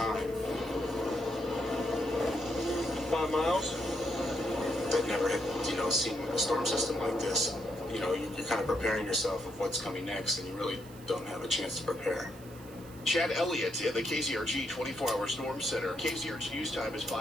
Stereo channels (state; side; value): noise; right; hiss, 21 dB below the sound